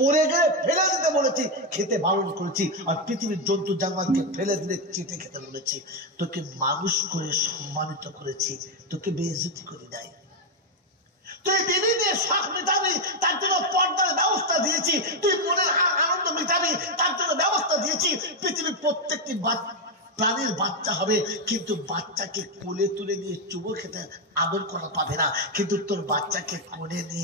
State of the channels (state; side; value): normal; both; correlation 0.04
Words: গেলে ফেলে দিতে বলেছি, খেতে বারণ করেছি। আর পৃথিবীর জন্তু জানোয়ারকে ফেলে দিলে চেটে খেতে বলেছি। তোকে মানুষ করে সম্মানিত করেছি, তোকে বেইজ্জতি করি নাই। তুই বিবিদের শখ মেটাবি, তার জন্য পর্দার ব্যবস্থা দিয়েছি। তুই মনের আনন্দ মেটাবি, তার জন্য ব্যবস্থা দিয়েছি। পৃথিবীর প্রত্যেকটি প্রাণীর বাচ্চা হবে, কিন্তু বাচ্চাকে কোলে তুলে নিয়ে চুমো খেতে আদর করা পাবে না, কিন্তু তোর বাচ্চাকে কোলে